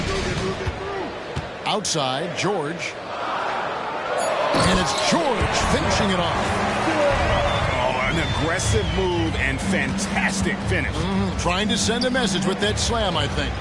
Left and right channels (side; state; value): both; identical; correlation 1.00